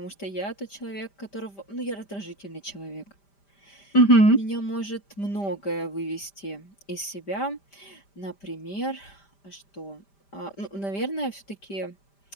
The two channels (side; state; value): right; late; 5.1 ms